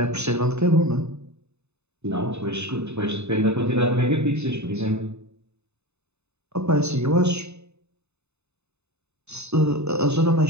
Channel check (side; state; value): left; late; 0.81 ms